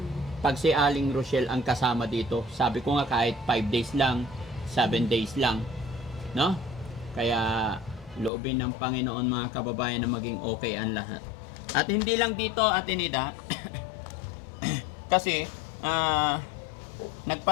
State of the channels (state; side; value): drops out; right; at 8.3 s